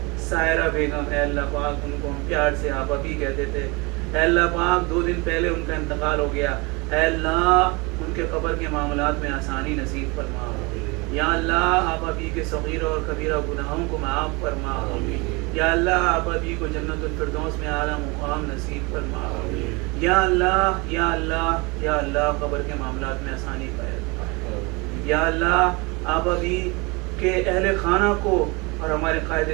سائرہ بیگم، اے اللہ پاک ان کو ہم پیار سے آپ ابھی کہتے تھے. اے اللہ پاک 2 دن پہلے ان کا انتقال ہو گیا. اے اللہ ان کے قبر کے معاملات میں آسانی نصیب فرما. یا اللہ آپ ابھی کے صغیرہ اور کبیرہ گناہوں کو معاف فرما. یا اللہ آپ ابھی کو جنت الفردوس میں اعلیٰ مقام نصیب فرما. یا اللہ یا اللہ یا اللہ قبر کے معاملات میں آسانی پیدا. یا اللہ آپ ابھی کے اہل خانہ کو اور ہمارے قائد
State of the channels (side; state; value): left; quieter; 27.1 dB